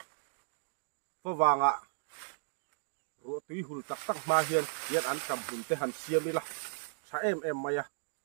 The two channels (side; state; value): left; silent; digital silence